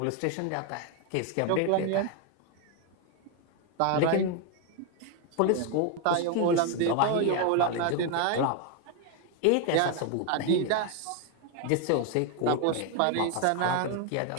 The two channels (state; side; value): different; both; correlation 0.01